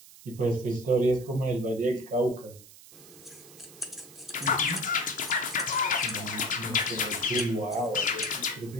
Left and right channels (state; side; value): noise; right; hiss, 20 dB below the sound